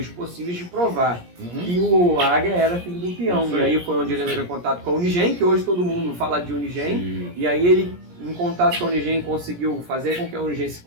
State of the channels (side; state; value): left; late; 17 ms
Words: possíveis de provar que o Águia era filho do peão. E aí foi onde ele entrou em contato com a Unigen, que hoje todo mundo fala de Unigen. E aí ele, em contato com a Unigen, conseguiu fazer com que a Unigen se